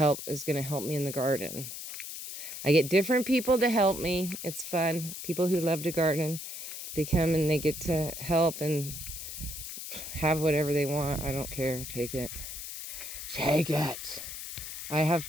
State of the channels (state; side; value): noise; left; hiss, 8 dB below the sound